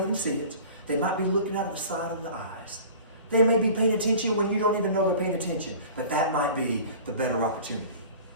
even see it. They might be looking out of the side of the eyes. They may be paying attention when you don't even know they're paying attention. But that might be the better opportunity.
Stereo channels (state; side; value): inverted; both; correlation -0.42